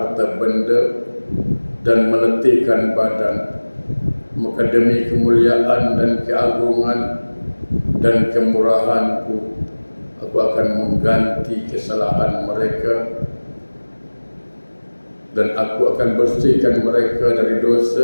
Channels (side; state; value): both; inverted; correlation -1.00